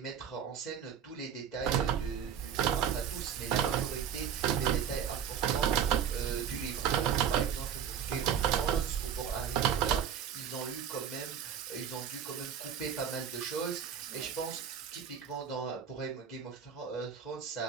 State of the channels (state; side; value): quieter; left; 8.4 dB